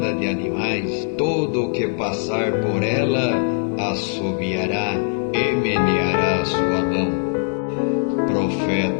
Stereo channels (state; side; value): silent; right; digital silence